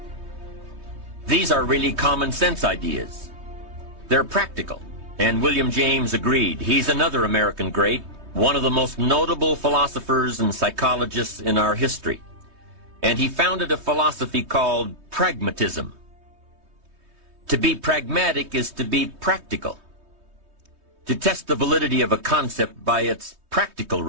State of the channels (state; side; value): late; left; 3.2 ms